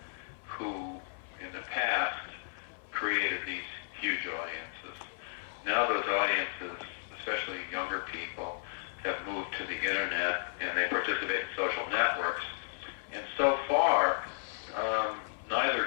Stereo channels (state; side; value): silent; right; 55 dB below the other